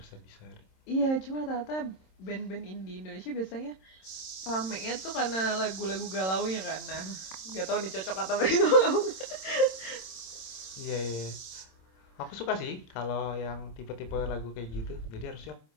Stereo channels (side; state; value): right; late; 26 ms